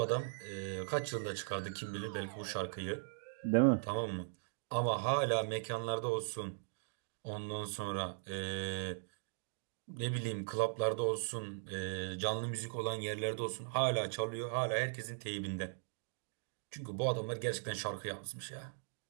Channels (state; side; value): silent; left; digital silence